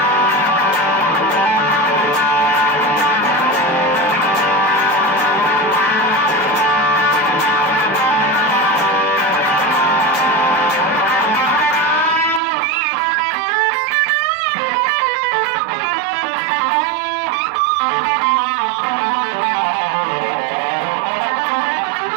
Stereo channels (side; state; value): left; drops out; at 12.4 s